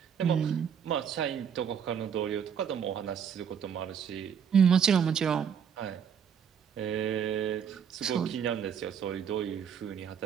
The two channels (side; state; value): left; quieter; 7.6 dB